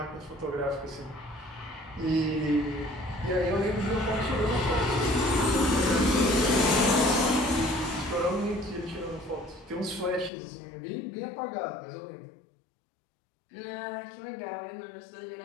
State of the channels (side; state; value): right; drops out; at 10.3 s